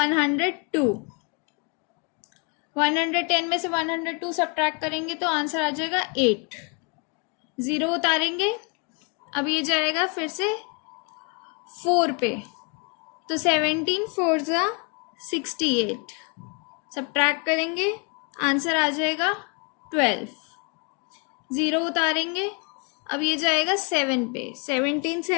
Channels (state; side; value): quieter; right; 33.9 dB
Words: 110 में से 102 सब्ट्रैक्ट करेंगे तो आंसर आ जाएगा 8, 0 उतारेंगे, अब ये जाएगा फिर से 4 पे, तो 17 4 जा 68, सब्ट्रैक्ट करेंगे आंसर आ जाएगा 12, 0 उतारेंगे, अब ये जाएगा 7 पे, 17